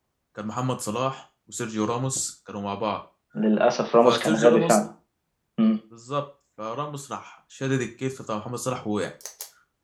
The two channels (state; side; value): identical; both; correlation 1.00